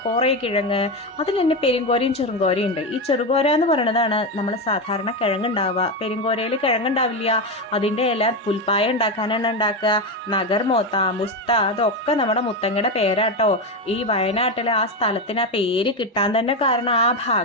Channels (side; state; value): both; normal; correlation 0.13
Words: കോറക്കിഴങ്ങ്, അതിൽ തന്നെ പെരുങ്കോരയും ചെറുങ്കോരയും ഉണ്ട്. ഈ ചെറുകോര എന്ന് പറയുന്നതാണ് നമ്മൾ സാധാരണ കിഴങ്ങുണ്ടാവുക. പെരുങ്കോരയിൽ കിഴങ്ങുണ്ടാവില്ല. അതിൻ്റെ ഇല പുൽപ്പായ ഉണ്ടാക്കാനാണ് ഉണ്ടാക്കുക. നഗർമോത്ത, മുസ്ത, അതൊക്കെ നമ്മുടെ മുത്തങ്ങയുടെ പേരാട്ടോ. ഈ വയനാട്ടിലെ ആ സ്ഥലത്തിന് ആ പേര് കിട്ടാൻ തന്നെ കാരണം ആ